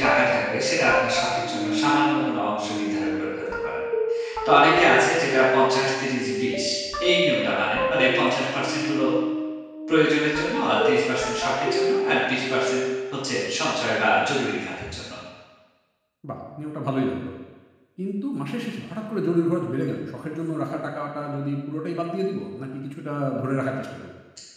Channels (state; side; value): identical; both; correlation 1.00